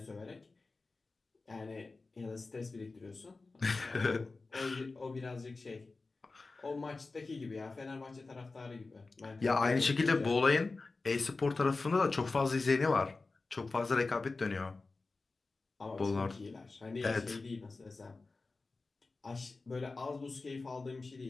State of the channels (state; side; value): quieter; right; 3.7 dB